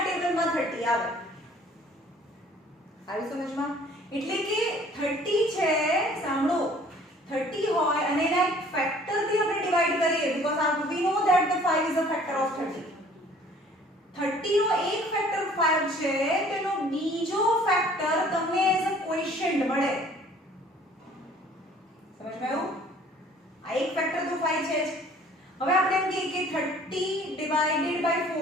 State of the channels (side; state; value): both; normal; correlation 0.54